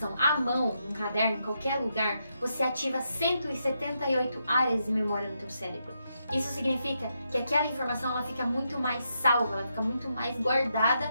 à mão, num caderno, em qualquer lugar, você ativa 178 áreas de memória no teu cérebro. Isso significa que aquela informação ela fica muito mais salva, ela fica muito mais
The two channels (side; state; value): both; inverted; correlation -0.82